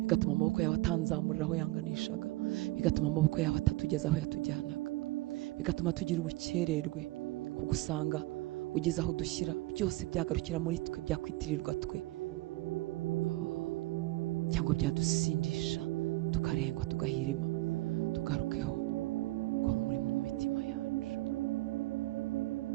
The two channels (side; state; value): left; quieter; 19.9 dB